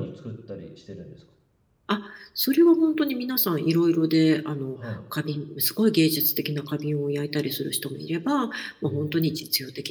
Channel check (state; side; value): identical; both; correlation 1.00